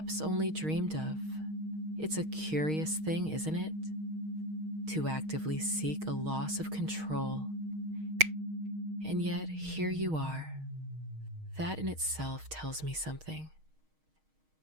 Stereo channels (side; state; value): left; late; 6.4 ms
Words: only dreamed of. It's a curious thing, isn't it? To actively seek a loss of control. And yet, here you are. That in itself tells me something.